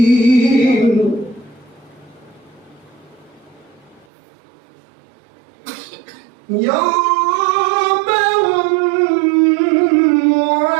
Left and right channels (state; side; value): drops out; left; at 4.0 s